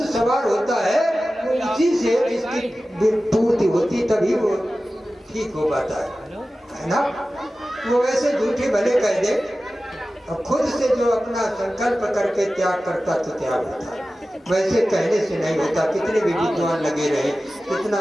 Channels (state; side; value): normal; both; correlation 0.95